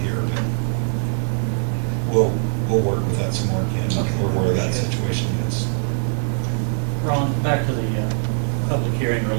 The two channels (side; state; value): left; silent; 62 dB below the other